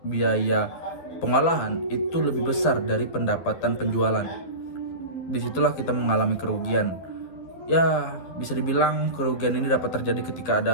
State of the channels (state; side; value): late; right; 11 ms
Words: biaya pengolahan itu lebih besar dari pendapatan penjualan. Disitulah kita mengalami kerugian. Ya, bisa dibilang kerugian ini dapat terjadi ketika